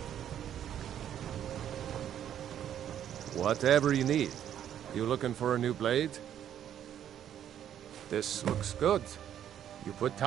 Whatever you need. You looking for a new blade? This looks good. You put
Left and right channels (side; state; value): left; quieter; 10.2 dB